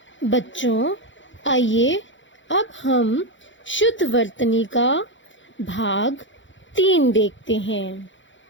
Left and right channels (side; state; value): right; late; 0.55 ms